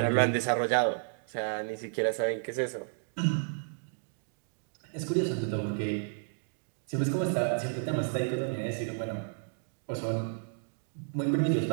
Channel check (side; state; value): left; silent; digital silence